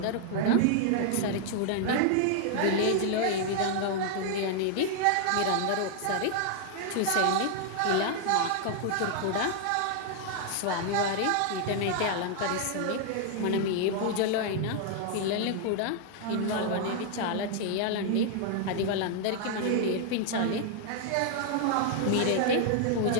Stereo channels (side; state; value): both; different; correlation 0.00